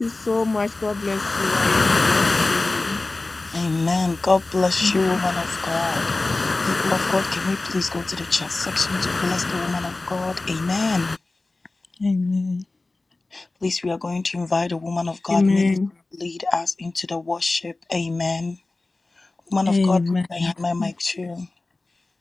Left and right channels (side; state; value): right; quieter; 3.2 dB